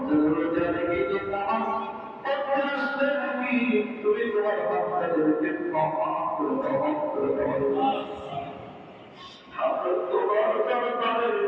রোজা রেখে যে নামাজ পড়তে আসলে নাকি তুমি তোমার বান্দাদেরকে ক্ষমা করে দাও আমরা তোমার দরবারের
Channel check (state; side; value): identical; both; correlation 1.00